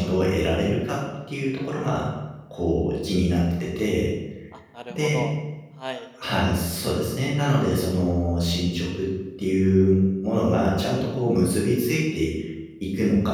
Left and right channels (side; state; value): both; identical; correlation 1.00